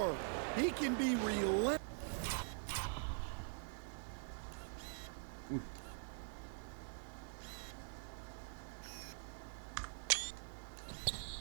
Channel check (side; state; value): left; silent; digital silence